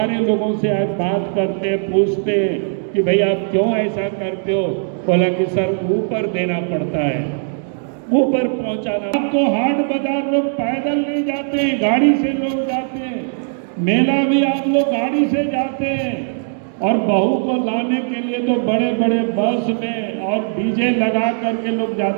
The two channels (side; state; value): left; silent; digital silence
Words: लोगों से आप बात करते पूछते कि भाई आप क्यों ऐसा करते हो, बोला कि सर ऊपर देना पड़ता है, ऊपर पहुंचाना। आपको हाट बाजार लोग पैदल नहीं जाते हैं, गाड़ी से लोग जाते हैं। मेला भी आप लोग गाड़ी से जाते हैं, और बहू को लाने के लिए तो बड़े बड़े बस में और डीजे लगा करके लोग